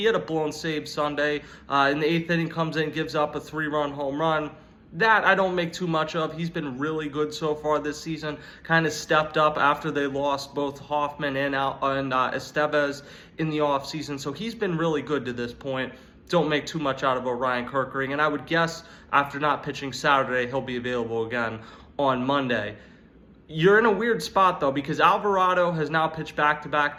had a blown save Sunday. In the 8th inning, comes in, gives up a 3-run home run. That I don't make too much of. He's been really good so far this season. Kind of stepped up after they lost both Hoffman and Estevez in the offseason. So he's been really good to this point. Don't make too much out of Orion Kerkering. And I would guess after not pitching Saturday, he'll be available again on Monday. You're in a weird spot, though, because Alvarado has now pitched back-to-back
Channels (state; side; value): identical; both; correlation 1.00